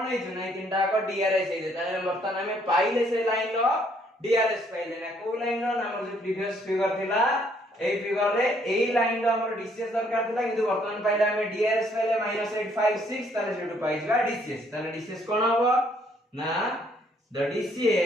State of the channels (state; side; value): normal; both; correlation 0.66